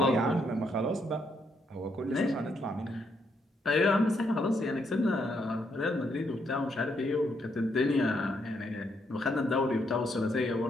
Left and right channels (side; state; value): both; normal; correlation 0.76